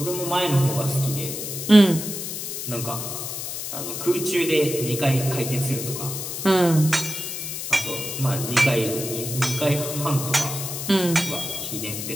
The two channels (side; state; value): left; noise; hiss, 6 dB below the sound